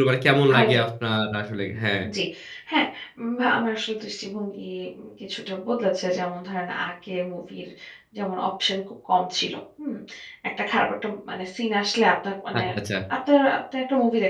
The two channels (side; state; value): both; identical; correlation 1.00